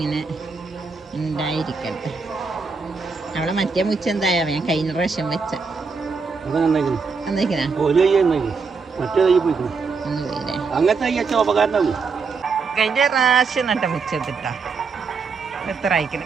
ഉണ്ടായിരിക്കട്ടെ. അവിടെ മറ്റേ മുച്ച എന്തായാ ഞാൻ കഴിഞ്ഞ പ്രാവശ്യം വെച്ച കഴിഞ്ഞ പ്രാവശ്യം നട്ട മുച്ചെത്തിട്ടാ എത്ര അയക്കണം.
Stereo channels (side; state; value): left; quieter; 4.9 dB